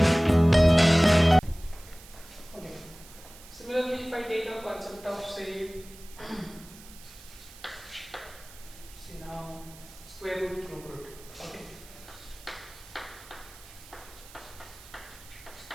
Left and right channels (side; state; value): right; noise; hiss, 20 dB below the sound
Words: Similarly, if I take a concept of say now square root, cube root. Okay.